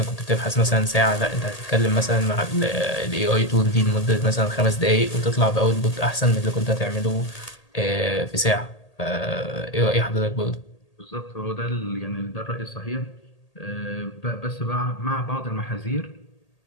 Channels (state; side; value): late; right; 1.8 ms